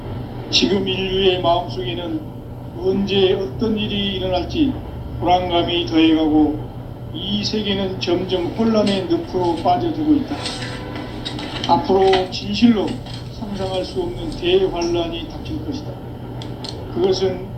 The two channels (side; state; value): both; identical; correlation 1.00